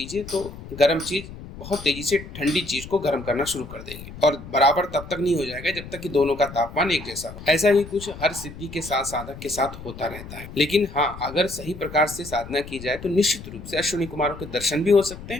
तो गर्म चीज बहुत तेजी से ठंडी चीज को गर्म करना शुरू कर देगी, और बराबर तब तक नहीं हो जाएगा जब तक कि दोनों का तापमान एक जैसा हो। ऐसा ही कुछ हर सिद्धि के साथ साधक के साथ होता रहता है। लेकिन हाँ, अगर सही प्रकार से साधना की जाए तो निश्चित रूप से अश्विनी कुमारों के दर्शन भी हो सकते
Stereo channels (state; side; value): noise; left; rumble, 13 dB below the sound